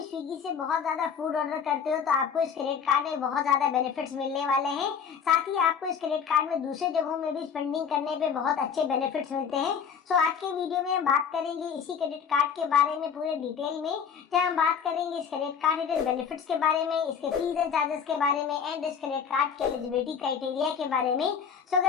स्विगी से बहुत ज्यादा फूड ऑर्डर करते हो तो आपको इस क्रेडिट कार्ड में बहुत ज्यादा बेनिफिट्स मिलने वाले हैं। साथ ही आपको इस क्रेडिट कार्ड में दूसरे जगहों में भी स्पेंडिंग करने पे बहुत अच्छे बेनिफिट्स मिलते हैं। सो आज के वीडियो में हम बात करेंगे इसी क्रेडिट कार्ड के बारे में पूरे डिटेल में, जहाँ हम बात करेंगे इस क्रेडिट कार्ड के बेनिफिट्स के बारे में, इसके फीस एंड चार्जेस के बारे में एंड इस क्रेडिट कार्ड के एलिजिबिलिटी क्राइटेरिया के बारे में। सो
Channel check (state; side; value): quieter; right; 7.0 dB